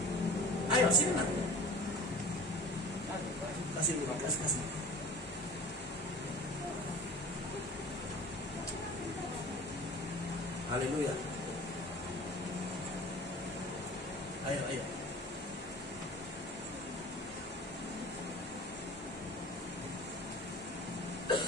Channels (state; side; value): normal; both; correlation 0.41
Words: Ayo sini nak. Kasih dulu, kasih. Haleluya. Ayo.